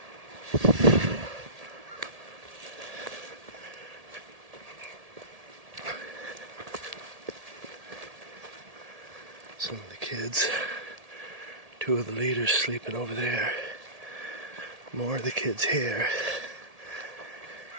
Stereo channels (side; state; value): left; late; 1.7 ms